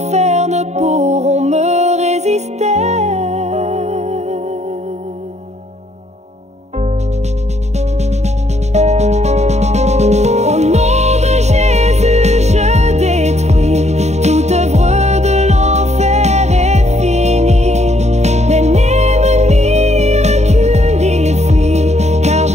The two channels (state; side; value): late; left; 0.32 ms